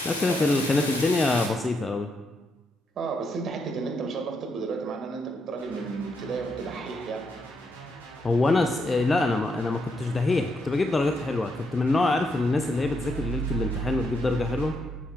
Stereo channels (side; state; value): both; normal; correlation 0.79